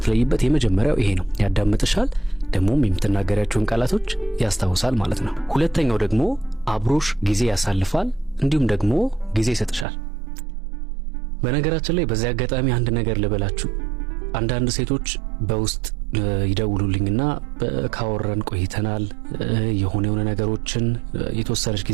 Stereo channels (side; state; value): left; drops out; at 9.9 s